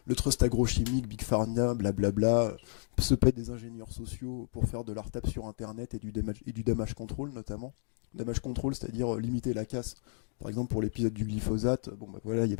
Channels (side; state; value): right; silent; digital silence